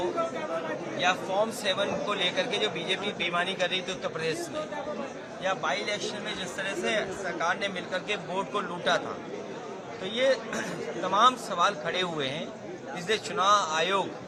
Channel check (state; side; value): identical; both; correlation 1.00